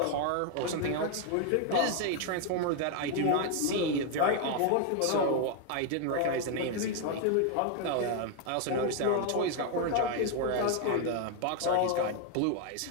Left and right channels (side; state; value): both; different; correlation 0.00